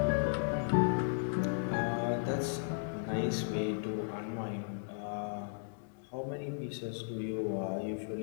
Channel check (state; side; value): silent; right; digital silence